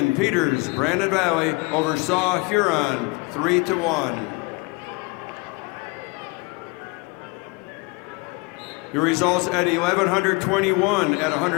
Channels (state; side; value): quieter; right; 26.8 dB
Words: Peters, Brandon Valley over Saw Huron, 3-1. Your results at 1121 at